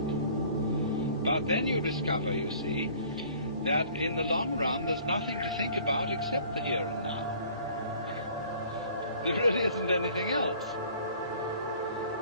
But then you discover, you see, that in the long run there's nothing to think about except the here and now. There really isn't anything else.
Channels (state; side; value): inverted; both; correlation -0.52